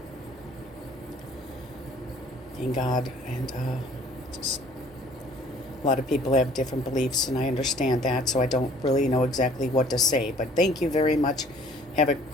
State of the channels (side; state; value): both; normal; correlation 0.54